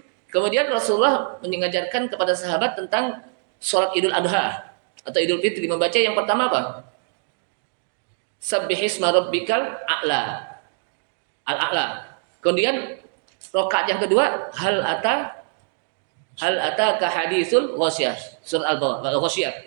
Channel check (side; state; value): left; silent; 63 dB below the other